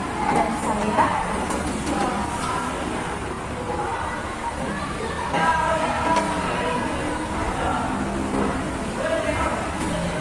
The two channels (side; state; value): both; identical; correlation 1.00